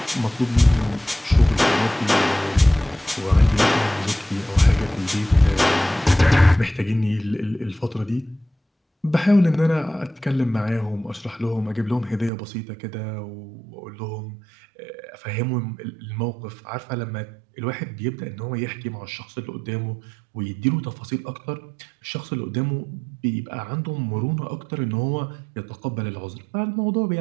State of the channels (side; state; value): left; drops out; at 12.3 s